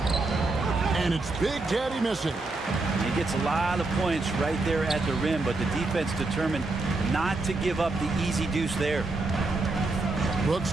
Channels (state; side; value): quieter; left; 3.3 dB